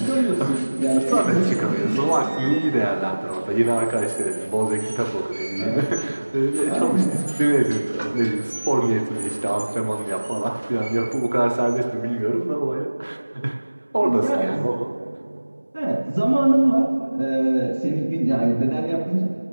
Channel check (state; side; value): inverted; both; correlation -1.00